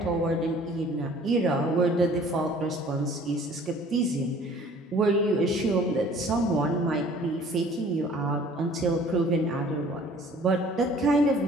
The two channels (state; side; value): normal; both; correlation 0.52